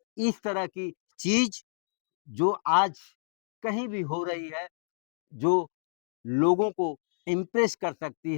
इस तरह की चीज़ जो आज कहीं भी हो रही है, जो लोगों को इम्प्रेस कर सकती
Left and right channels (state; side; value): silent; right; digital silence